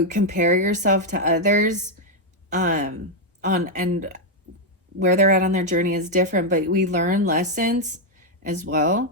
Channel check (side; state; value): both; normal; correlation 0.01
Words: compare yourself to others, and where they're at on their journey is different, but we learn lessons as well.